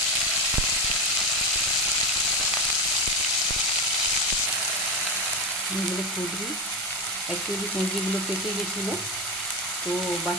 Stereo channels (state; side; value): normal; both; correlation 0.16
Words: এগুলো কুঁদরি, অ্যাকচুয়ালি কুঁদরিগুলো পেকে গেছিলো, তো